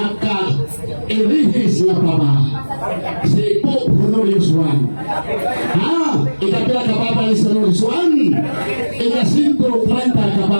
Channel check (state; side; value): inverted; both; correlation -1.00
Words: na papa, si Pope Honorius I. Ikapila ka papa ni Honorius I, ika-130 ka